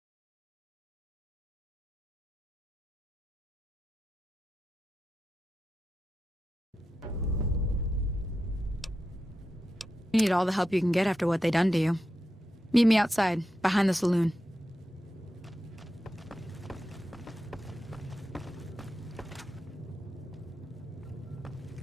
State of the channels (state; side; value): normal; both; correlation 0.89